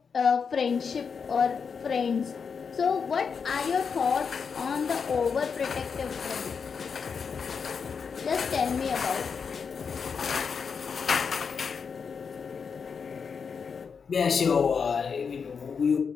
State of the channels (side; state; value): right; quieter; 5.9 dB